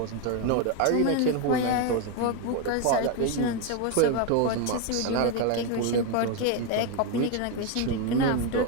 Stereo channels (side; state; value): both; different; correlation 0.02